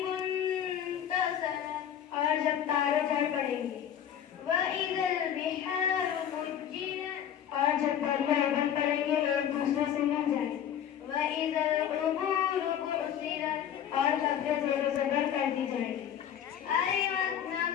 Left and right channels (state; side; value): quieter; right; 9.6 dB